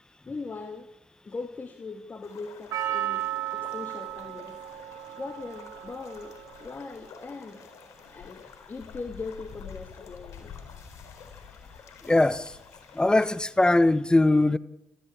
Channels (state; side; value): normal; both; correlation 0.90